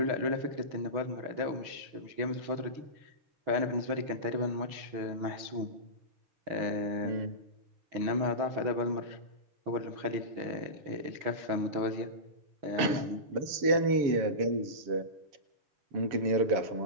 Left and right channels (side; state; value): left; late; 7.1 ms